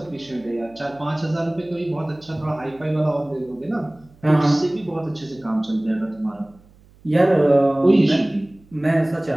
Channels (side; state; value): right; noise; hum, 28 dB below the sound